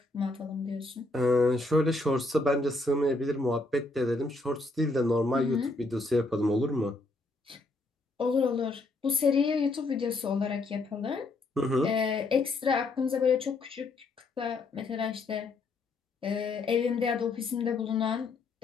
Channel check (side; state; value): right; quieter; 3.2 dB